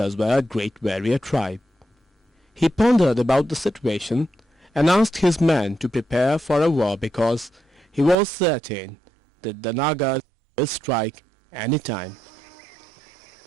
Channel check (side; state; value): left; drops out; at 8.2 s